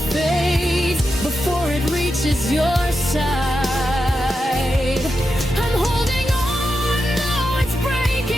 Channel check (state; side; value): normal; both; correlation 0.88